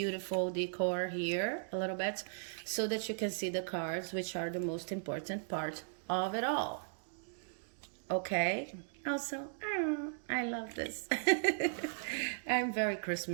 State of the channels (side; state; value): left; silent; digital silence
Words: decor here a little bit so that you can see the cards, which are the most important part of it all. Okay, also, I love this. I'm very